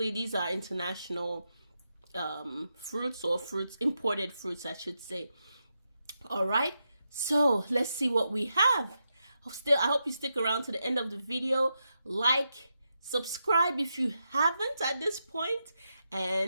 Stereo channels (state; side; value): inverted; both; correlation -0.86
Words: these are international fruits, or imported fruits I should say. All right, so let's see what we have. I hope you stick around to the end of the video. Like, subscribe if you haven't at this point,